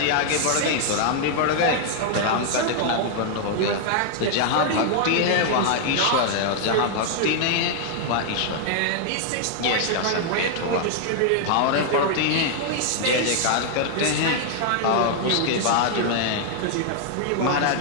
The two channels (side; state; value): both; different; correlation 0.00